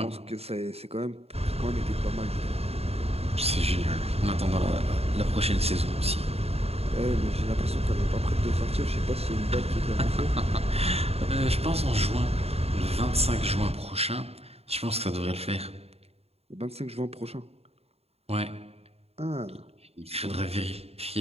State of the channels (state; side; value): late; left; 0.29 ms